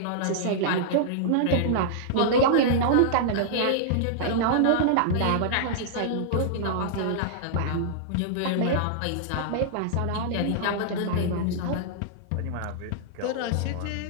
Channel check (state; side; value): different; both; correlation -0.01